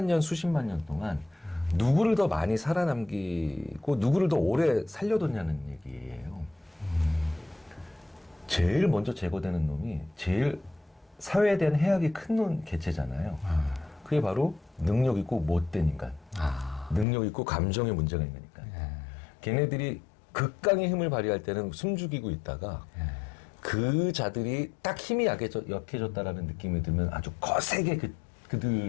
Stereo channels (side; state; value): right; drops out; at 17.1 s